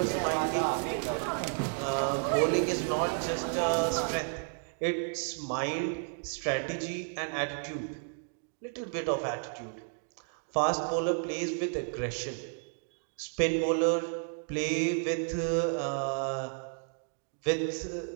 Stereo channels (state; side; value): silent; left; 56 dB below the other